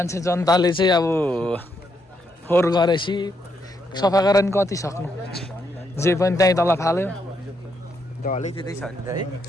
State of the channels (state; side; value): normal; both; correlation 0.77